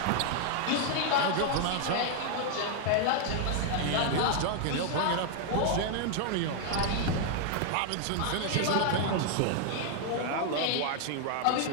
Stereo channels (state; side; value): different; both; correlation 0.00